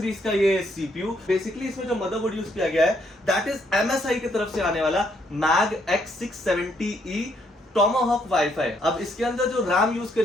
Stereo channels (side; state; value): both; normal; correlation 0.72